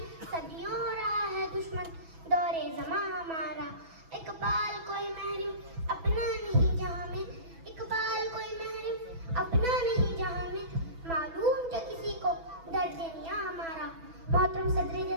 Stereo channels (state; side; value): late; left; 6.1 ms